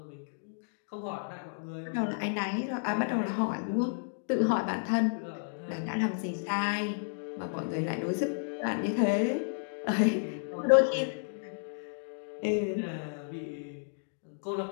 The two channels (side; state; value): right; silent; digital silence